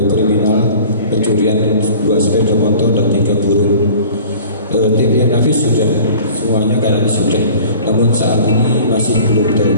kriminal pencurian 2 sepeda motor dan 3 burung. Tim Nafis sudah semuanya kayaknya sudah, namun saat ini masih belum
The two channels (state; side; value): inverted; both; correlation -0.45